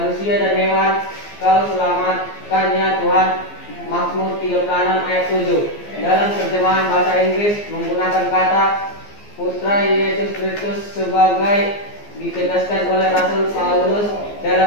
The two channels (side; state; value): right; late; 14 ms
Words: dan hewan kau selamatkannya Tuhan. Mazmur 36 ayat 7. Dalam terjemahan bahasa Inggris menggunakan kata Putra Yesus Kristus sebagai ditegaskan oleh Rasul Paulus